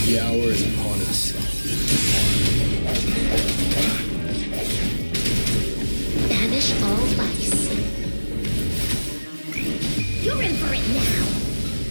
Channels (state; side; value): inverted; both; correlation -1.00